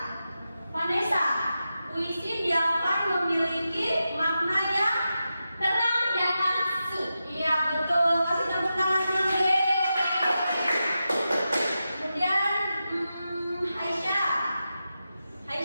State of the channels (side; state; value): both; inverted; correlation -0.90